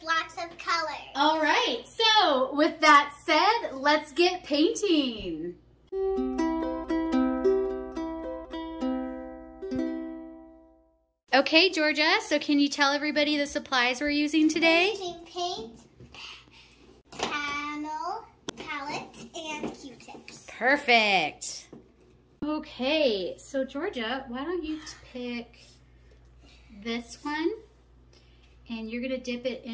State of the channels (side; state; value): both; identical; correlation 1.00